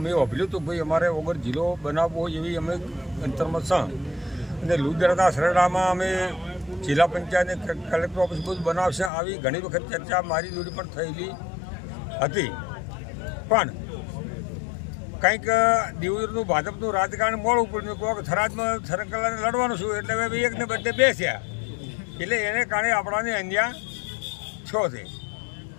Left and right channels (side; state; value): right; drops out; at 9.1 s